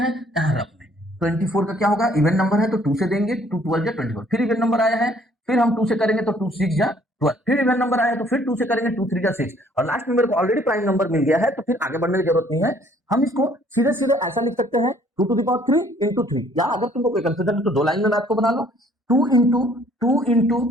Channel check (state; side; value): normal; both; correlation 0.60